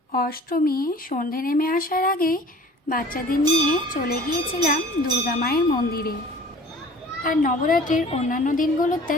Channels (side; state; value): both; normal; correlation 0.47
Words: অষ্টমী সন্ধে নেমে আসার আগেই বাচ্চাদের নিয়ে চলে গিয়েছিলাম দুর্গা মায়ের মন্দিরে। আর নবরাত্রির অন্যান্য দিনগুলোতে